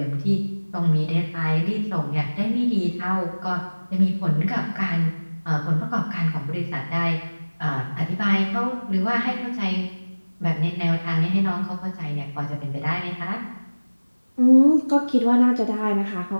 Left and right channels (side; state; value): both; inverted; correlation -1.00